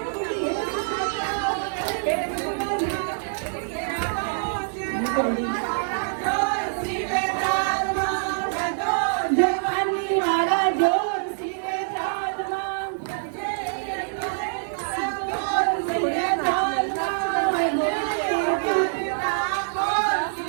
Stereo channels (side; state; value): left; silent; digital silence